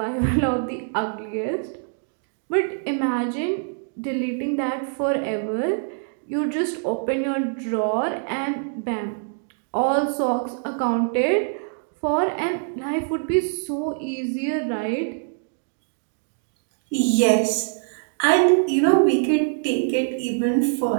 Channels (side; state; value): left; silent; 63 dB below the other